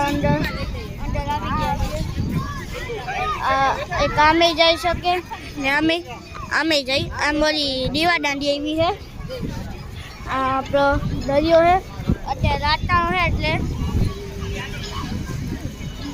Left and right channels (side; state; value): both; identical; correlation 1.00